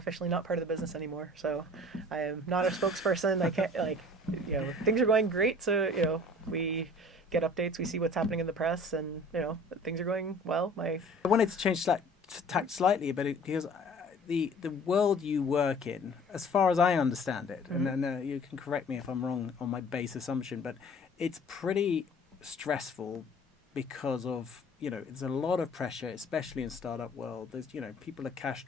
not part of the business anymore. So I am not a spokesperson. I can't, like, things are going great. So, we get updates, we see what's happening in the press, and, things are going well. I wanted to change tact slightly, but because the world you work in, as far as I understand it, and then you can correct me if I'm wrong on my base assumption, but it's pretty stressful because of, it's a lot of pressure, especially in startup world. There's, people are cash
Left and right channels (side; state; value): both; normal; correlation 0.48